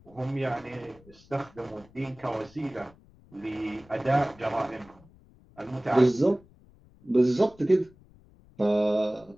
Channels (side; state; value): left; noise; rumble, 26 dB below the sound